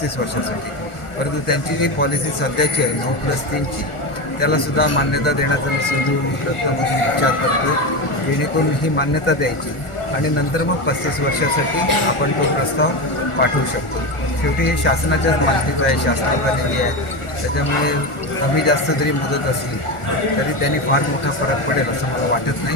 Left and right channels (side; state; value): right; late; 1.4 ms